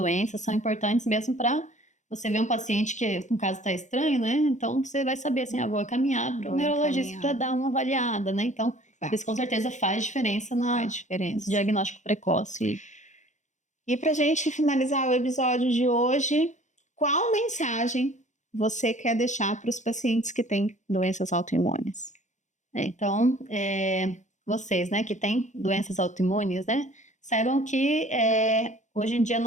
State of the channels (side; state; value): right; late; 0.35 ms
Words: são importantes mesmo para você ver um paciente que, no caso, está estranho, né? Então, você vai saber, assim, vou caminhar para o neurologista para dar uma avaliada, né? Então, isso com certeza faz diferença nesse diagnóstico precoce. E para a gente finalizar o episódio de hoje, qual mensagem você quer deixar para os pacientes que têm doenças autoimunes? Então, vocês, né, que têm doenças autoimunes, né, saibam que hoje em dia